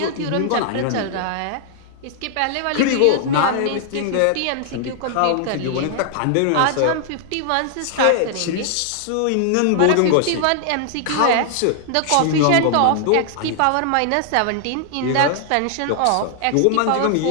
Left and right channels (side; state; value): both; different; correlation -0.01